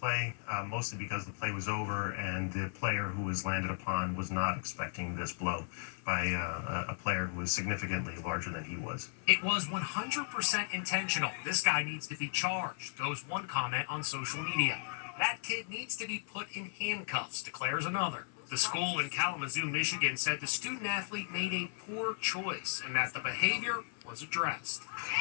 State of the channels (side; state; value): right; silent; 54 dB below the other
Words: play, mostly because the play was over and the player who was landed upon was not expecting this blow by a player who was significantly larger than he was. It was 100% intentional. This guy needs to be charged, goes one comment on social media. That kid needs to be put in handcuffs, declares another. The school in Kalamazoo, Michigan said the student athlete made a poor choice and that the behavior was addressed.